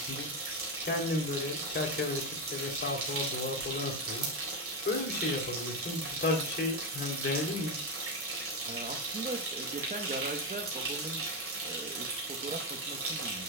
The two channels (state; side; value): normal; both; correlation 0.10